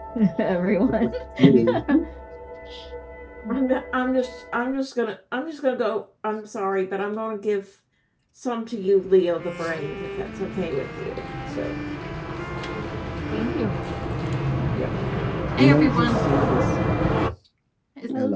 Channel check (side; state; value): both; identical; correlation 1.00